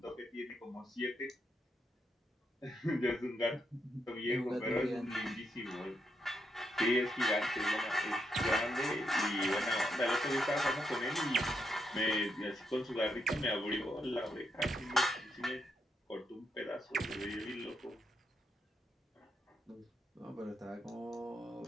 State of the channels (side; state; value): both; normal; correlation 0.81